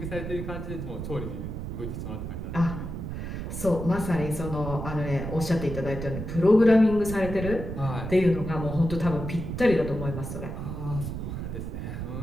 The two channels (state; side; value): noise; right; rumble, 6 dB below the sound